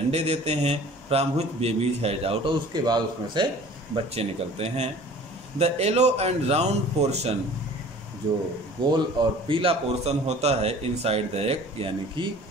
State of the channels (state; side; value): normal; both; correlation 0.47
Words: देते हैं। From which babies has out, और उसके बाद उसमें से बच्चे निकलते हैं। The yellow and round portion, जो गोल और पीला पोर्शन होता है इनसाइड द एग, यानी कि